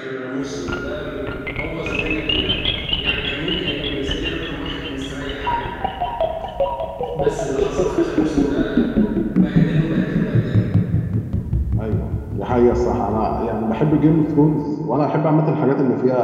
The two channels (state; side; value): identical; both; correlation 1.00